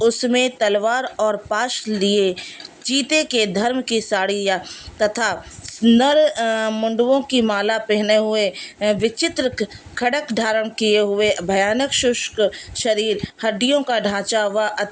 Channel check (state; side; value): identical; both; correlation 1.00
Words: उसमें तलवार और पाश लिए चीते के धर्म की साड़ियाँ तथा नर मुंडवों की माला पहने हुए विचित्र खड़क धारण किए हुए भयानक शुष्क शरीर, हड्डियों का ढांचा व